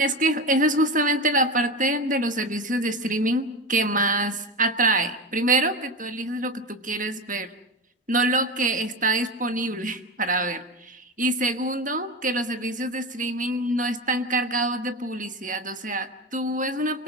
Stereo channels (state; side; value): normal; both; correlation 0.22